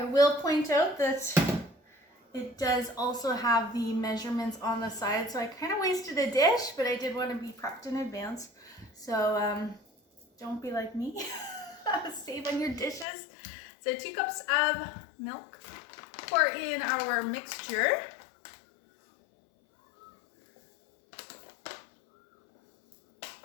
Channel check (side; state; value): right; drops out; at 13.1 s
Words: will point out that it does also have the measurements on the side, so I kind of wasted a dish, but I did want to be prepped in advance. So don't be like me. Save on your dishes. So 2 cups of milk. Pour in our mixture.